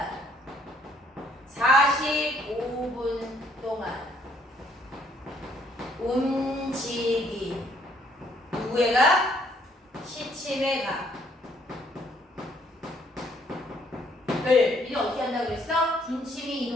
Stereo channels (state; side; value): normal; both; correlation 0.66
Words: 45분 동안 움직인 누구의 각? 시침의 각을 우리는 어떻게 한다고 그랬어? 분침이